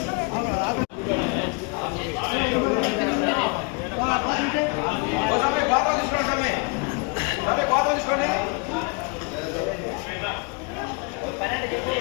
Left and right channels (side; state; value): right; quieter; 32.4 dB